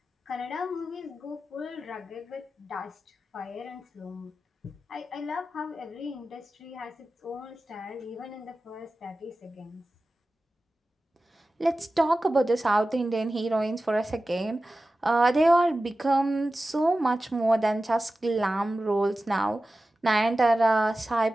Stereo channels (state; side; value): normal; both; correlation 0.95